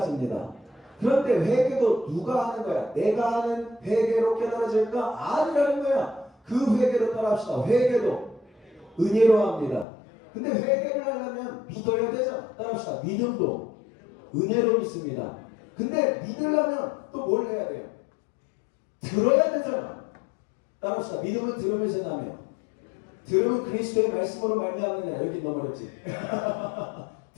그런데 회개도 누가 하는 거야? 내가 하는 회개로 깨달아질까? 아니라는 거야. 그 회개로 따라합시다. 회개도 은혜로 합니다. 근데 회개를 하려면 믿어야 되잖아. 따라합시다. 믿음도 은혜로 믿습니다. 근데 믿으려면 또 뭘 해야 돼요? 들어야 되잖아. 따라합시다. 믿음은 들으면서 나며 들음은 그리스도의 말씀으로 말미암느냐. 여기 너무 어렵지.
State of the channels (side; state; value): right; drops out; at 9.9 s